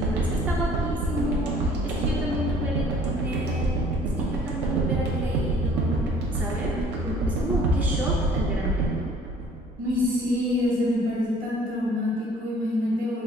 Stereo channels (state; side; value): normal; both; correlation 0.54